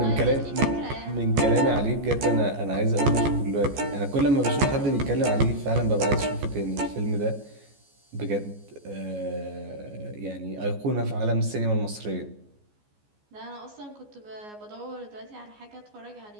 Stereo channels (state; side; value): late; left; 14 ms